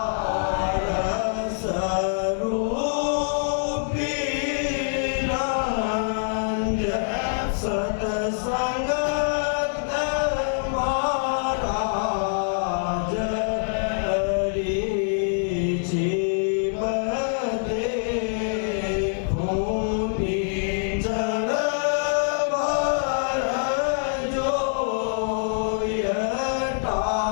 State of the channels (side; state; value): right; silent; digital silence